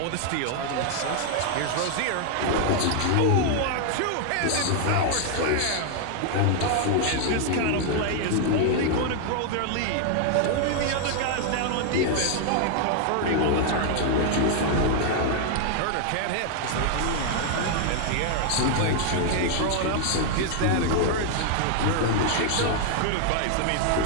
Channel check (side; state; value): both; different; correlation 0.00